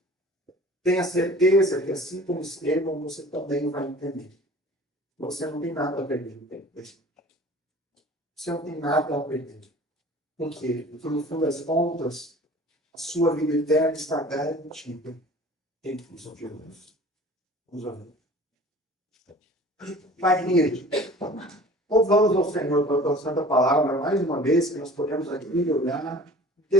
tenha certeza que assim como Estevão, você também vai entender. Você não tem nada a perder no tempo presente. Você não tem nada a perder. Por quê? Porque no fim das contas, a sua vida eterna está garantida em Cristo Jesus. Vamos orar. Pai querido, louvamos ao Senhor pela tua santa palavra, mais uma vez que nós podemos aqui olhar um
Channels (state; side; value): normal; both; correlation 0.45